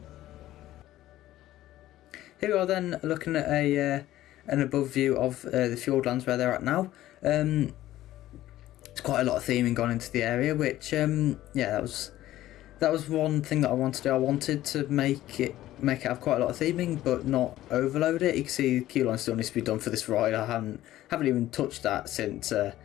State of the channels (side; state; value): right; quieter; 14.5 dB